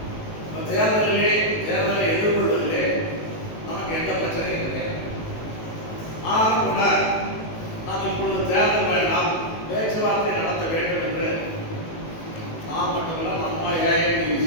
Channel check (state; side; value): late; right; 18 ms